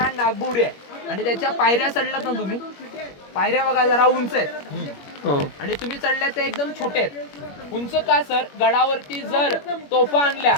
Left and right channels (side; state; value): right; late; 21 ms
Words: हा नागबोडी आहे. आणि त्याच्या पायऱ्या चढलात ना तुम्ही, पायऱ्या बघा जरा उंच आहेत, आणि तुम्ही चढल्या त्या एकदम छोटे आहेत. उंच का सर? गडावरती जर तोफा आणल्या